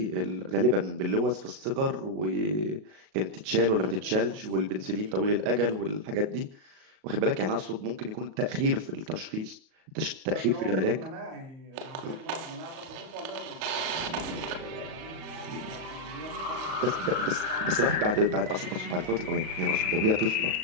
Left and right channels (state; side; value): late; left; 37 ms